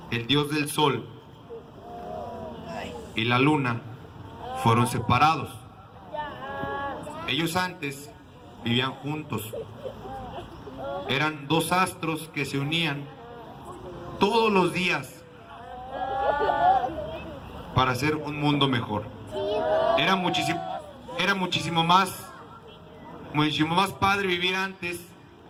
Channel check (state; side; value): identical; both; correlation 1.00